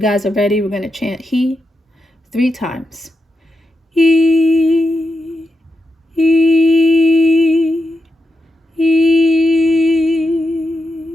guys are ready, we're going to chant He 3 times. He, He, He.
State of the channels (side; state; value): both; normal; correlation 0.87